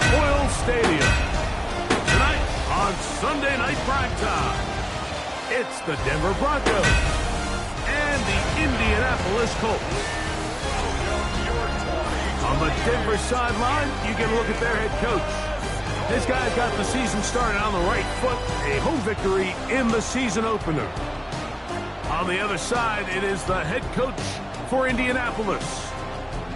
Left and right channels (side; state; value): both; identical; correlation 1.00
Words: Oil Stadium. Tonight on Sunday Night Primetime, it's the Denver Broncos and the Indianapolis Colts. On the Denver sideline, you get a look at their head coach. This guy's got the season started on the right foot, a home victory in the season opener. On the other side, it is the head coach for Indianapolis.